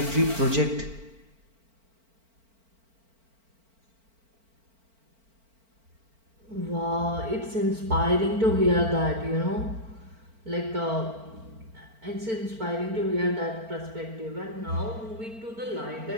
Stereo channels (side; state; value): left; late; 4.4 ms